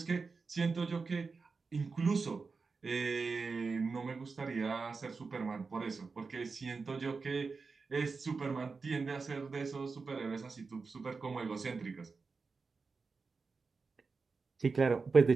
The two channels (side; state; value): left; quieter; 4.5 dB